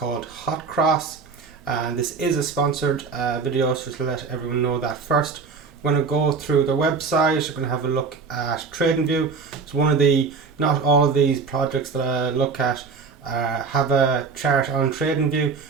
Hotcross, and this is a sponsored video, so just to let everyone know that first. We're going to go through their website, we're going to have a look at TradingView. It's one of the, not all of these projects that I look at have a chart on TradingView.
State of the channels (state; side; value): quieter; left; 5.1 dB